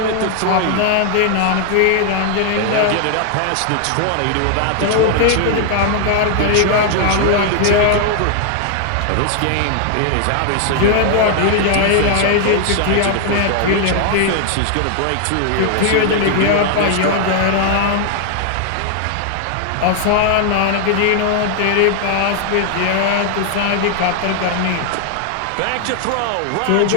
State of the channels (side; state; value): both; different; correlation 0.00